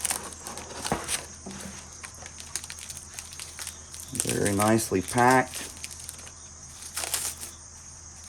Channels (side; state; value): both; identical; correlation 1.00